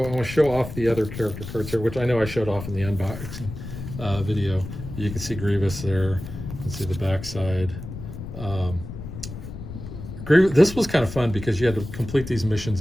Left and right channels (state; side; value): noise; left; rumble, 10 dB below the sound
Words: I want to show off the other character cards here, which I know I showed off in the unboxing video. You can see Grievous there. You can see the backside. This was kind of fun because you had to complete these